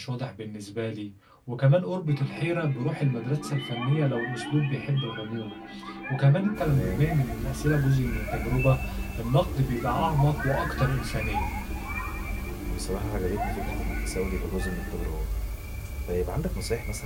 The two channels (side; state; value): both; identical; correlation 1.00